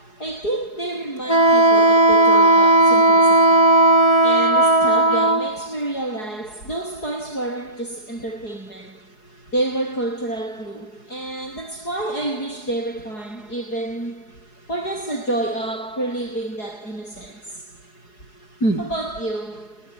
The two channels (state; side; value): late; right; 4.8 ms